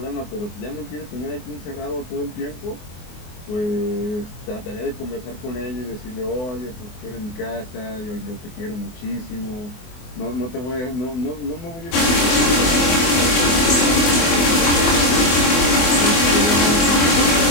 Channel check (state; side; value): late; right; 24 ms